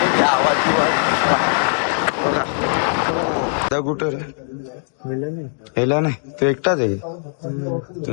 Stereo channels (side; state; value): right; silent; digital silence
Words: घ्या आवाज बिवाज बघा. हो कुठं हेला नाही तो एकटाच आहे.